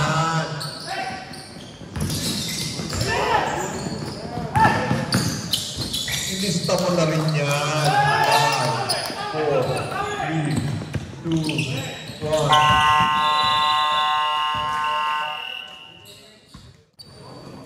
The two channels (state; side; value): identical; both; correlation 1.00